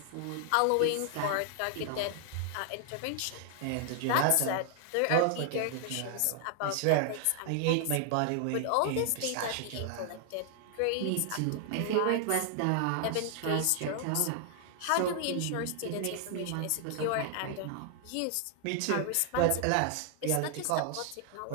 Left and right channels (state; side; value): different; both; correlation 0.00